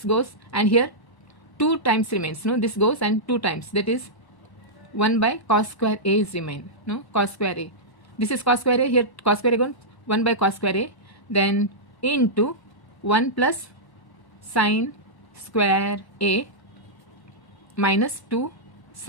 goes, and here 2 times remains, no? This goes and 2 times, that is 1 by cos square a is remain, no? Cos square a. This is cos square a, here cos square a gone, 1 by cos square a, then into 1 plus sine square A minus 2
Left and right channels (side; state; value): right; late; 1.1 ms